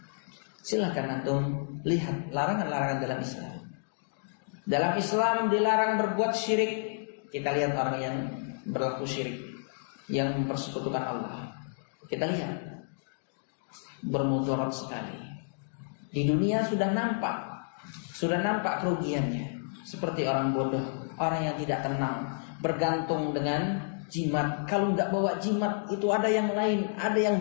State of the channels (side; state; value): right; silent; digital silence